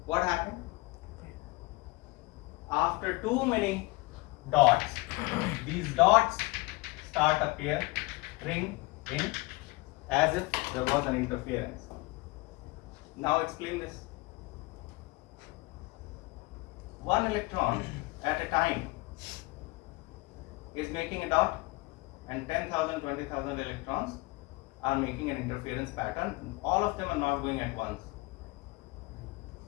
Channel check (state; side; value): quieter; right; 23.5 dB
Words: What happened? After too many dots, these dots start appearing in as if there was an interference. Now explain this. One electron at a time is making a dot, and 10,000, 20,000 electrons are making an interference pattern. All of them are not going at once.